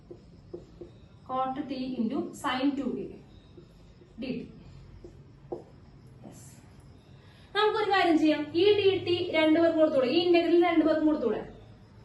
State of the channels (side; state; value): both; identical; correlation 1.00